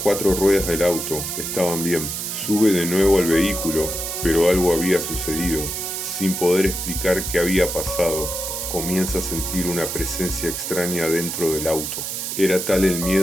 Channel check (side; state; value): right; noise; hiss, 4 dB below the sound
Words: ruedas del auto estaban bien. Sube de nuevo al vehículo, pero algo había sucedido. Sin poder explicar qué había pasado, comienza a sentir una presencia extraña dentro del auto. Era tal el